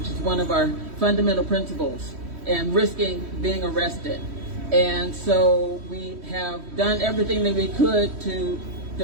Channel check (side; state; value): left; late; 3.1 ms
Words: is one of our fundamental principles, and risking being arrested. And so we have done everything that we could to